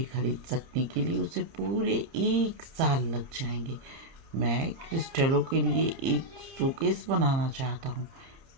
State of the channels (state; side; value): late; left; 30 ms